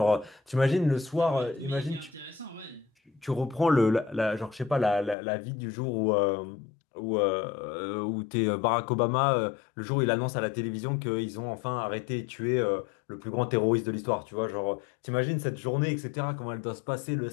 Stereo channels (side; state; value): right; drops out; at 5.2 s